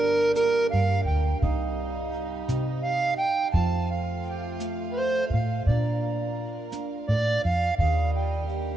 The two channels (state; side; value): normal; both; correlation 0.84